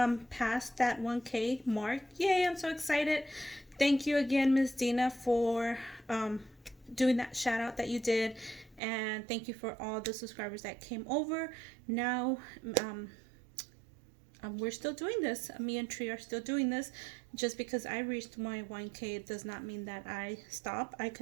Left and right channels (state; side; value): drops out; left; at 8.8 s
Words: passed that 1K mark. Yay, I'm so excited. Thank you again, Miss Dina, for doing that shout out that you did, and thank you for all the subscribers that came over. Now we're still doing this. Me and Tree are still doing this. Just because I reached my 1K does not mean that I stop. I